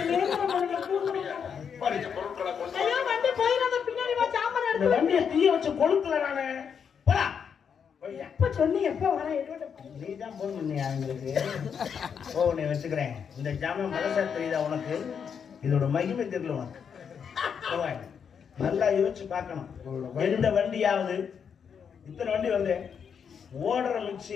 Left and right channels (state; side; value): quieter; right; 7.1 dB